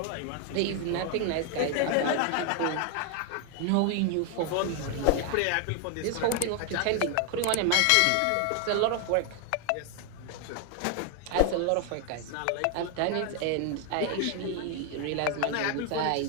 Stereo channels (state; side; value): different; both; correlation 0.00